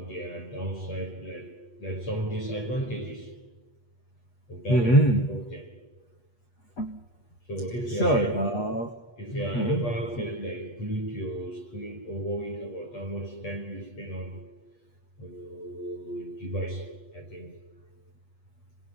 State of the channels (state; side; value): late; right; 8.3 ms